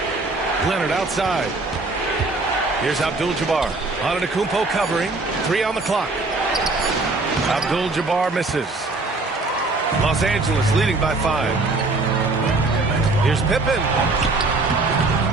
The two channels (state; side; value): quieter; left; 3.4 dB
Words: Leonard outside. Here's Abdul-Jabbar. Antetokounmpo covering. 3 on the clock. Abdul-Jabbar misses. Los Angeles leading by 5. Here's Pippen.